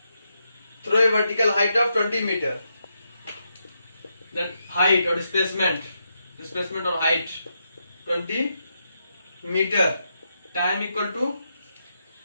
Throw a vertical height of 20 meter. Then height or displacement or height 20 meter. Time equal to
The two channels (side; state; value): both; inverted; correlation -0.82